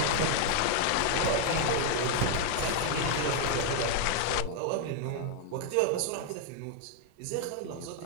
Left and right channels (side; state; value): both; different; correlation 0.00